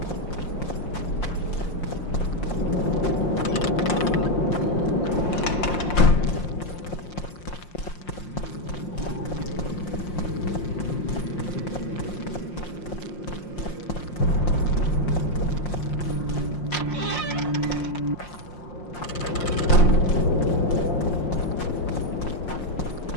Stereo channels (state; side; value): late; right; 5.6 ms